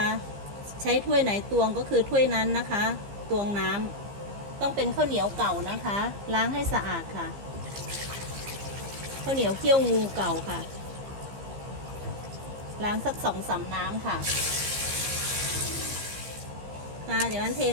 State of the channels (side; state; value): left; late; 15 ms